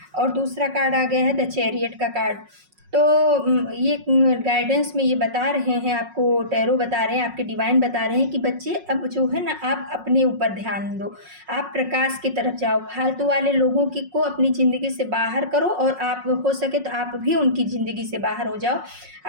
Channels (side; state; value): left; late; 5.5 ms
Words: और दूसरा कार्ड आ गया है द चैरियट का कार्ड। तो ये गाइडेंस में ये बता रहे हैं आपको, टैरो बता रहे हैं, आपके डिवाइन बता रहे हैं कि बच्चे अब जो है ना, आप अपने ऊपर ध्यान दो, आप प्रकाश की तरफ जाओ, फालतू वाले लोगों की को अपनी ज़िंदगी से बाहर करो, और आप हो सके तो आप भी उनकी ज़िंदगी से बाहर हो जाओ।